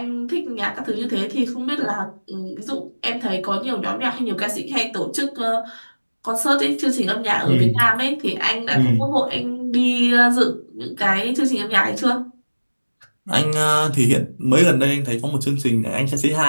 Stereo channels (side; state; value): both; inverted; correlation -1.00